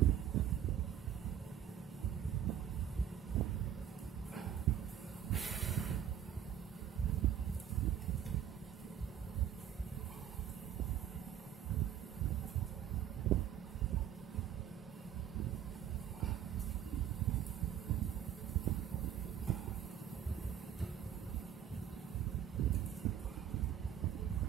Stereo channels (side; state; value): left; quieter; 9.5 dB